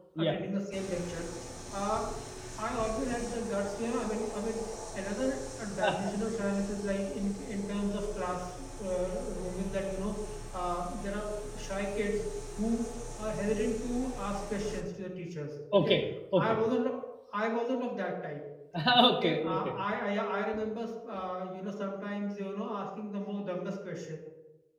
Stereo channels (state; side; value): identical; both; correlation 1.00